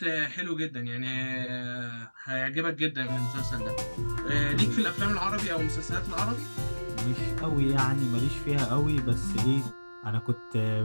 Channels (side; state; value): both; inverted; correlation -1.00